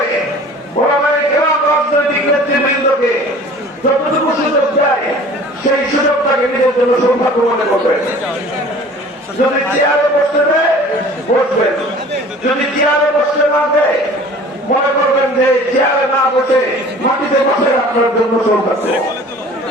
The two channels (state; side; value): normal; both; correlation 0.46